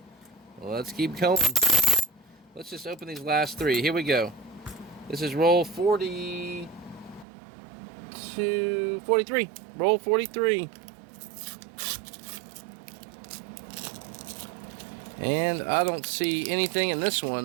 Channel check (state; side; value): drops out; left; at 7.2 s